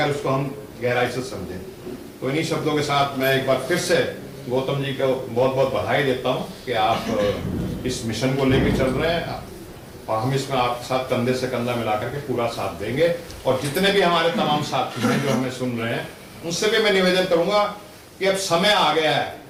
उसको हम गहराई से समझें। तो इन्हीं शब्दों के साथ मैं एक बार फिर से गौतम जी को बहुत बहुत बधाई देता हूं कि आप इस मिशन को लेकर चल रहे हैं और हम इसमें आपके साथ कंधे से कंधा मिलाकर के पूरा साथ देंगे। और जितने भी हमारे तमाम साथी हैं जो हमें सुन रहे हैं, उनसे भी मैं निवेदन करूंगा कि अब समय आ गया है।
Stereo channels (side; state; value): both; identical; correlation 1.00